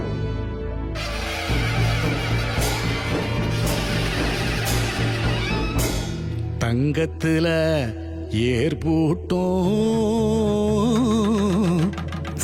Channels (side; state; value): both; identical; correlation 1.00